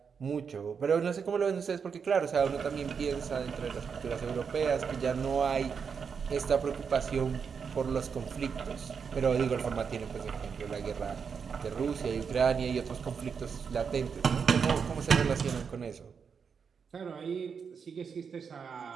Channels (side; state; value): left; quieter; 6.3 dB